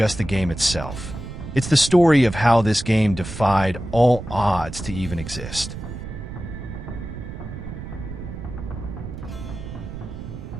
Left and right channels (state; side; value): noise; right; rumble, 9 dB below the sound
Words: the game itself. It's the story of how this game defied all odds to even exist.